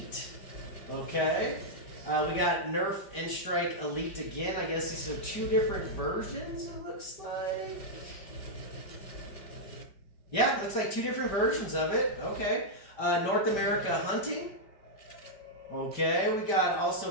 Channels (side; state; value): right; late; 5.1 ms